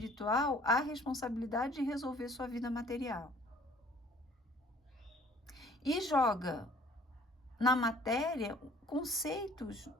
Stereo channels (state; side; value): normal; both; correlation 0.53